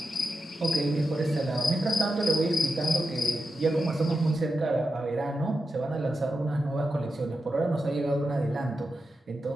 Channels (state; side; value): normal; both; correlation 0.89